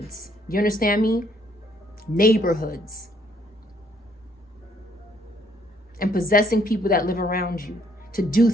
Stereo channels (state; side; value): normal; both; correlation 0.67